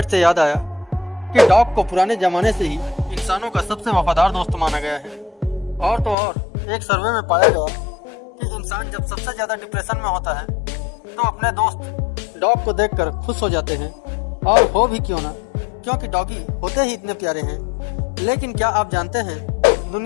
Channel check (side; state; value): right; drops out; at 6.2 s